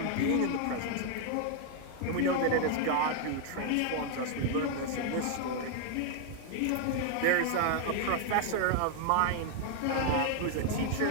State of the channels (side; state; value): both; different; correlation 0.00